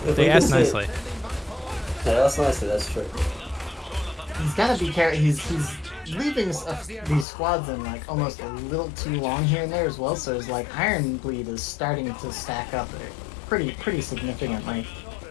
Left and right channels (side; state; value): right; drops out; at 7.2 s